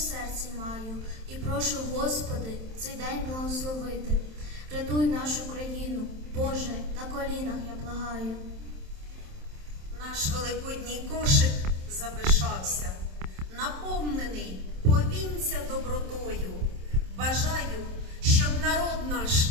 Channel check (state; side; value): late; left; 27 ms